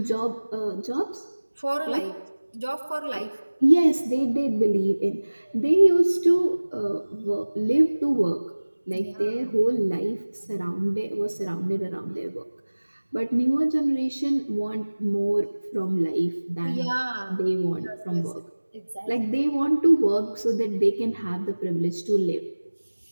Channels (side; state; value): both; inverted; correlation -1.00